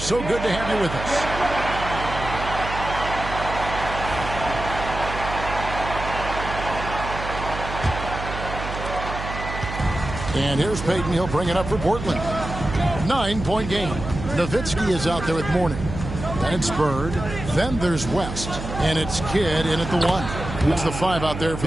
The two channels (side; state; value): right; noise; hum, 7 dB below the sound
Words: So good to have you with us. And here's Payton. He'll bring it up for Portland. 9-point game. Nowitzki is out there with Mourning. Then it's Bird. Then there's West. And it's Kidd in at the 1. It's the 5 out there for